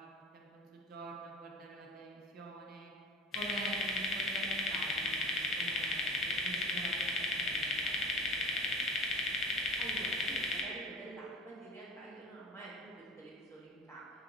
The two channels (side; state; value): both; normal; correlation 0.32